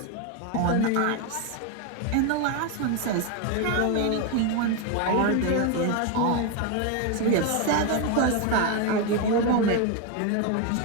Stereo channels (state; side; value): different; both; correlation 0.02